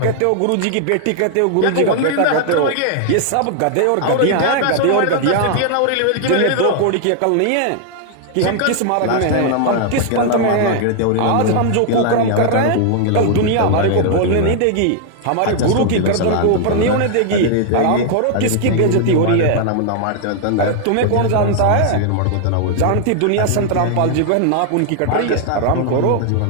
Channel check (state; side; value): different; both; correlation 0.00